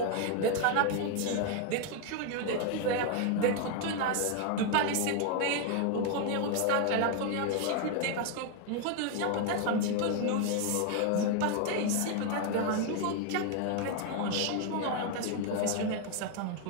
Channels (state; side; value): different; both; correlation 0.01